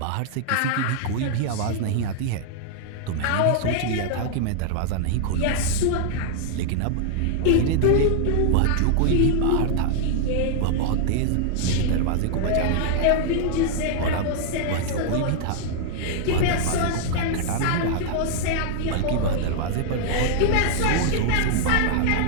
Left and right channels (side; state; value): both; different; correlation -0.01